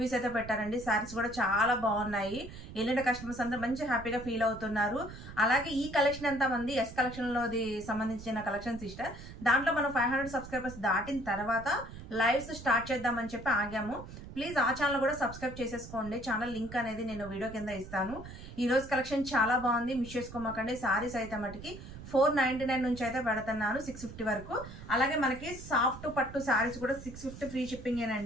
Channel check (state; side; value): noise; right; rumble, 13 dB below the sound